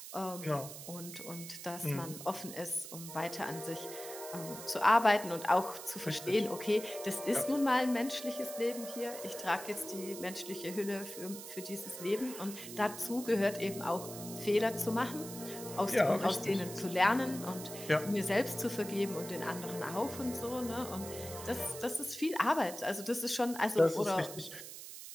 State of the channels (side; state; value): right; noise; hiss, 11 dB below the sound